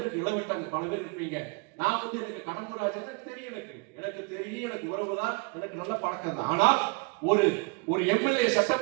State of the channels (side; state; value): left; quieter; 30.2 dB